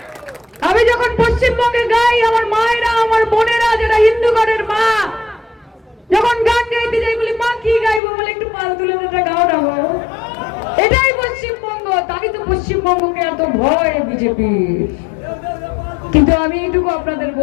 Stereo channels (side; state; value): right; drops out; at 8.0 s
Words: আমি যখন পশ্চিমবঙ্গে গাই, আমার মায়েরা, আমার বোনেরা যারা হিন্দু ঘরের মা, যখন গান গাইতে যাই বলি মা কি গাইবো, বলে একটু পাল তুলে দেটা গাও না গো। এটাই পশ্চিমবঙ্গ। তাই তো পশ্চিমবঙ্গকে এত ভয় বিজেপির। কিন্তু আমি এইটুকু আপনাদের